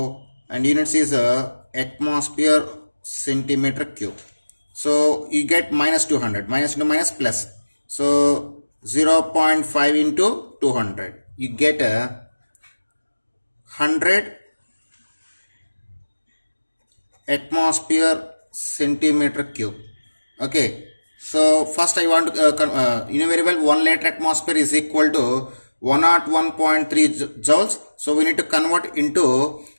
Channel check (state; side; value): inverted; both; correlation -1.00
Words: and units is atmosphere centimeter cube. So you get minus 200, minus into minus plus. So 0.5 into 200, you get 100 atmosphere centimeter cube. Okay, so first I want to you know very well 1 liter atmosphere is equal to 101.3 joules. So we need to convert into